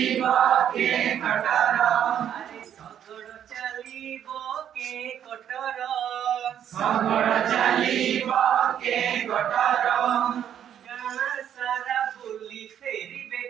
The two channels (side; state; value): left; quieter; 9.7 dB